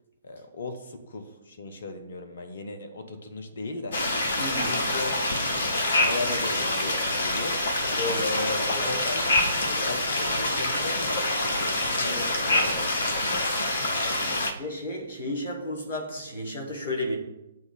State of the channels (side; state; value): both; inverted; correlation -0.64